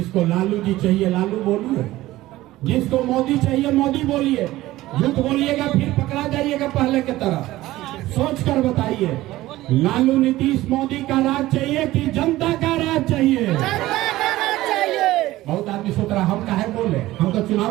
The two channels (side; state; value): left; quieter; 16.7 dB